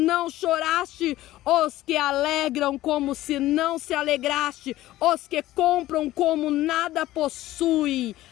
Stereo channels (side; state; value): right; quieter; 15.7 dB